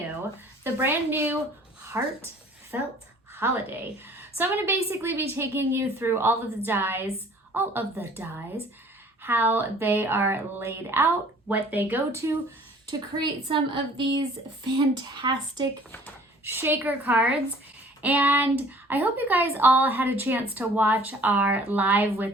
the brand new Heartfelt Holiday. So I'm going to basically be taking you through all of the dies, how they are laid out, what they go to create some of these fantastic shaker cards. And I hope you guys all had a chance to watch our live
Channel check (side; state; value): both; normal; correlation 0.52